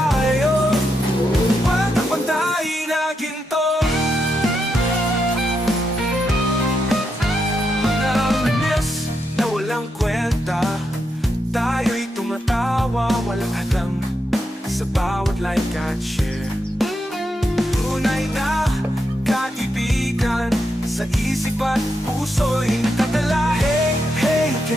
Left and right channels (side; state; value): both; normal; correlation 0.83